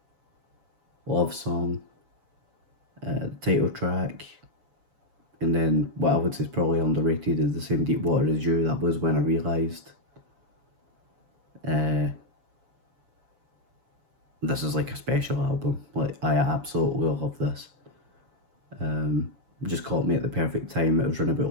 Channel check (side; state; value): left; late; 7.0 ms